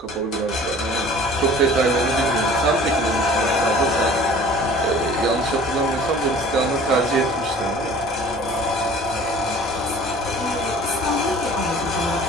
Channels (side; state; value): both; normal; correlation 0.48